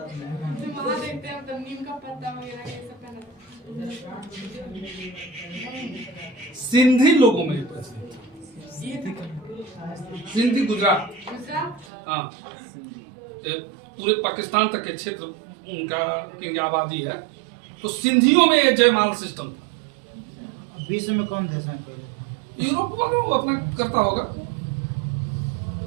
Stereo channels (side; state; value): left; drops out; at 11.9 s